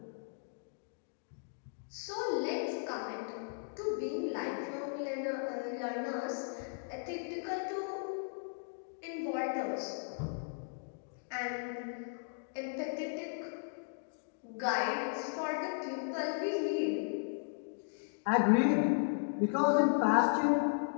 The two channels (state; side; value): silent; right; digital silence